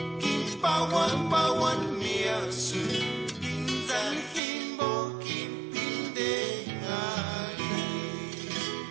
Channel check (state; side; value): drops out; left; at 4.4 s